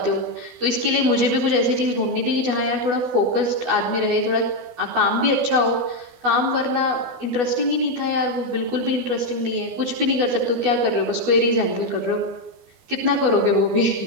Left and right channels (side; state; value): left; late; 12 ms